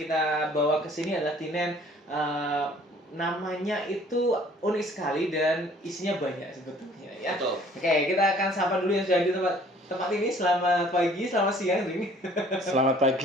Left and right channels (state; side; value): normal; both; correlation 0.55